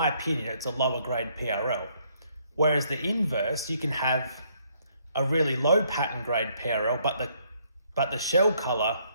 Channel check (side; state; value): both; inverted; correlation -0.68